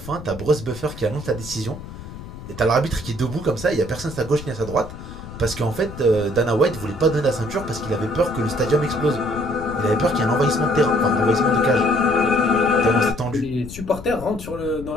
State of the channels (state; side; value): noise; left; rumble, 13 dB below the sound